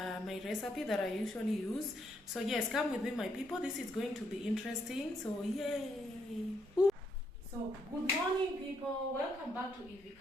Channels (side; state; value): both; normal; correlation 0.75